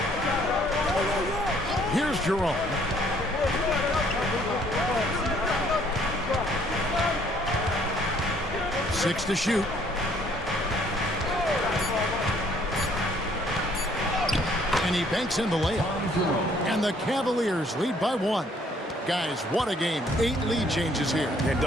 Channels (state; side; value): normal; both; correlation 0.63